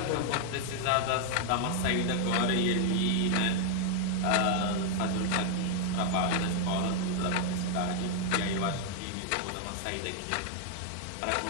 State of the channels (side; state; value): both; different; correlation 0.00